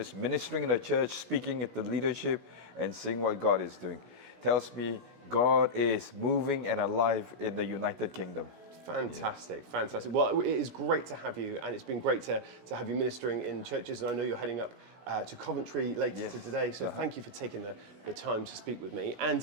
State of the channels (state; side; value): late; left; 17 ms